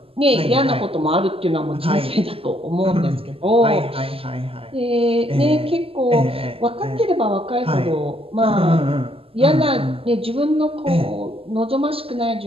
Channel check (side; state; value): left; late; 0.27 ms